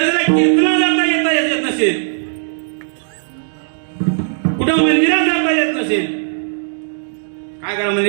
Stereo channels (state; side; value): silent; left; digital silence